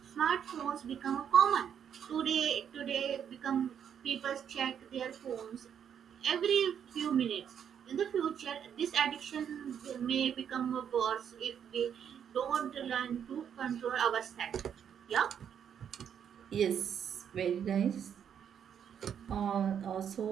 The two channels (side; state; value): left; quieter; 8.4 dB